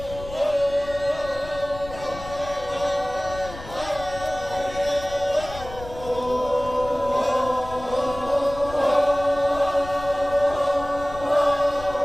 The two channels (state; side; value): noise; left; rumble, 14 dB below the sound